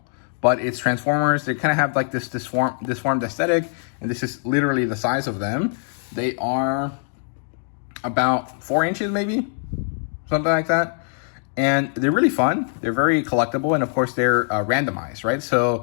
but it's Transformers. They kind of have like this disformed aesthetic, and this is literally the size of them. They are about 4 inches, maybe, something like that. And they're really fun. They're very collectible, and of course they're randomized, right?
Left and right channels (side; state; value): right; silent; 64 dB below the other